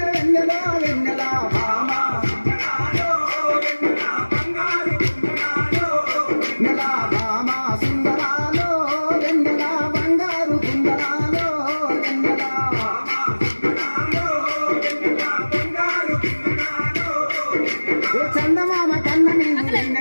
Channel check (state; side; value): inverted; both; correlation -1.00